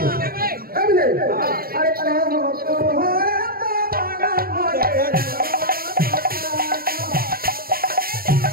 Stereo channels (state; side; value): late; left; 0.43 ms